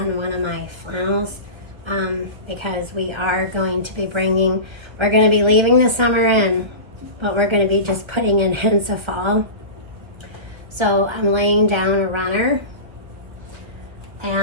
one of my flannels because we are going to be we're going to be leaving the summer in, but we're going to be just putting in hints of fall. So I'm laying down a runner,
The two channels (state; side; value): late; left; 1.3 ms